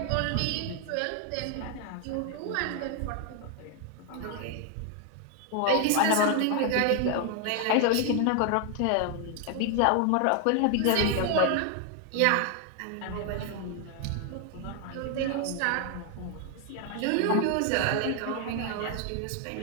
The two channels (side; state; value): both; different; correlation 0.00